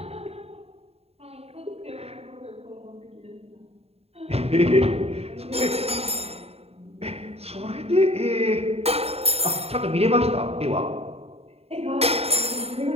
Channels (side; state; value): left; late; 0.29 ms